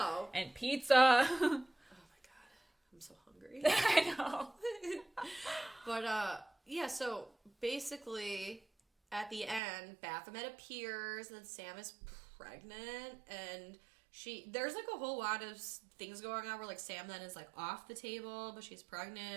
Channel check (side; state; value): left; drops out; at 9.6 s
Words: And pizza. Oh, my God. I'm so hungry. I know. But, yeah, so, basically, at the end, Baphomet appears, and then Sam is pregnant, and there's like a whole lot of things going on where like Sam then is like off the table, but she's